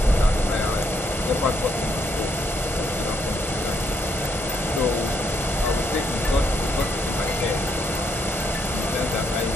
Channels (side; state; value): both; normal; correlation 0.75